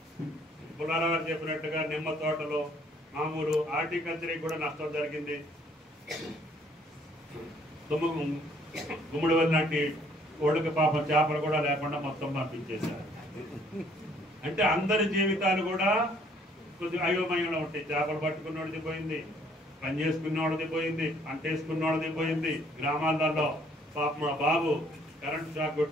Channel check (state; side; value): normal; both; correlation 0.62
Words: పుల్లారావు చెప్పినట్టుగా నిమ్మ తోటలు, మామూలు హార్టికల్చర్కి కూడా నష్టం జరిగింది. గుమ్మడి లాంటి ఒడుక పాపం చేపలు కూడా లేకుండా మొత్తం పంపించేశారు. అంటే అందరి జీవితాలు కూడా కొద్దిగా అయోమయంలో ఉంటాయి. చేపలు పట్టుకున్నోడిది పోయింది, పని చేసుకున్నోడిది పోయింది, పంట వేసుకున్నోడిది పోయింది. గ్రామాలలో పాపం బాబు కరెంటు షాక్